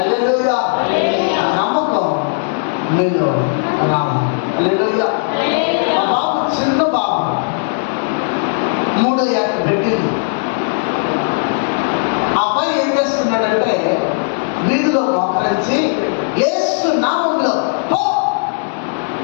ఆ నమ్మకం మీలో రావాలి. హల్లెలూయా. ఆ బాబు చిన్న బాబు 3 ఏళ్ళ పెట్టింది. ఆ అబ్బాయి ఏం చేస్తున్నాడంటే వీధిలో మోకరించి యేసు నామంలో పో,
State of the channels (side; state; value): right; silent; digital silence